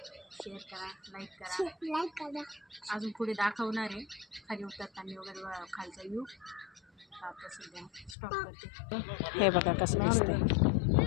शेअर करा, लाईक करा. अजून पुढे दाखवणार आहे खाली उतरताना वगैरे खालचा व्ह्यू. आता सध्या स्टॉप करते. हे बघा कसं दिसतंय.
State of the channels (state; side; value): drops out; right; at 8.2 s